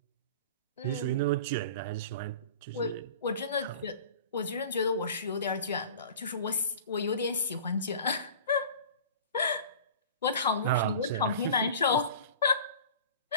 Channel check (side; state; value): both; inverted; correlation -0.40